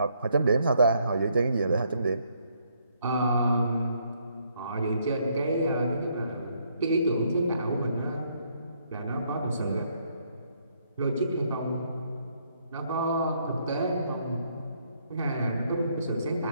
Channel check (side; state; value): both; inverted; correlation -0.71